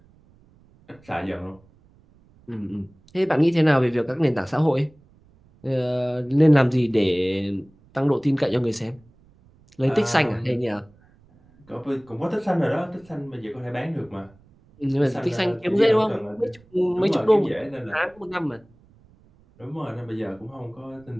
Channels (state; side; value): noise; right; rumble, 29 dB below the sound